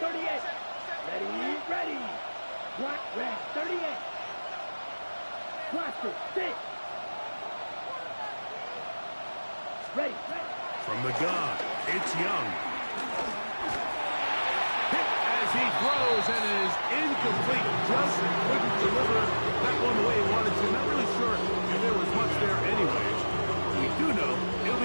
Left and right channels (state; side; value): inverted; both; correlation -1.00